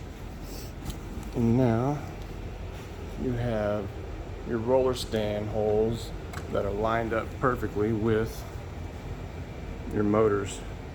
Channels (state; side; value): identical; both; correlation 1.00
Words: And now you have your roller stand holes that are lined up perfectly with your motors